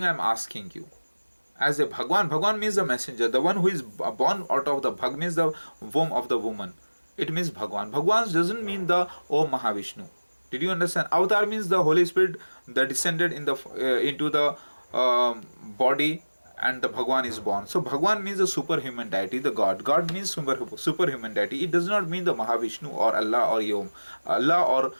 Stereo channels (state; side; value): inverted; both; correlation -1.00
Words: I am asking you, as a Bhagwan means the messenger, the one who is born out of the Bhag means the womb of the woman. It means Bhagwan. Bhagwan doesn't mean the Om Mahavishnu. Did you understand? Avatar means the Holy Spirit that descended in the into the body, and the Bhagwan is born. So Bhagwan means the superhuman deity, the God. God means superhuman deity. It does not mean the Mahavishnu or Allah or Om, Allah or